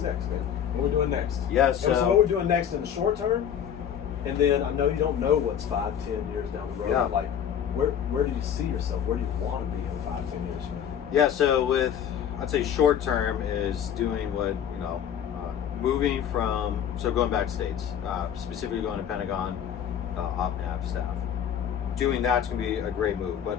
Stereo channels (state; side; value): quieter; right; 9.0 dB